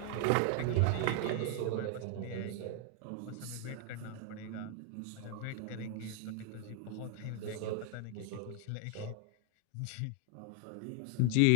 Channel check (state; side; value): different; both; correlation 0.00